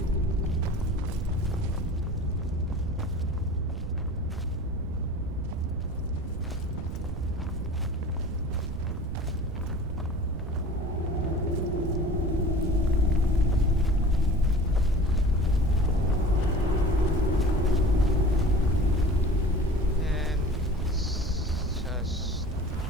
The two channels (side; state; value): right; noise; rumble, 7 dB below the sound